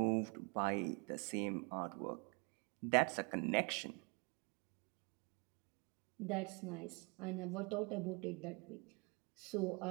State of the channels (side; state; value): left; quieter; 30.8 dB